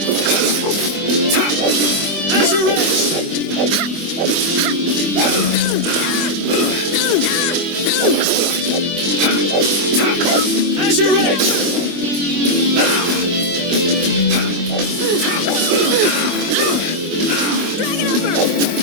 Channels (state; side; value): late; left; 24 ms